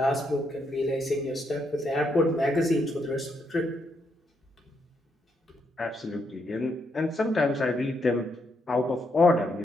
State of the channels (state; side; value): normal; both; correlation 0.78